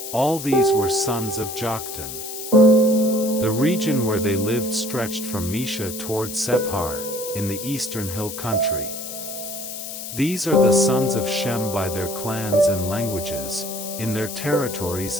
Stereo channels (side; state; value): left; noise; hiss, 8 dB below the sound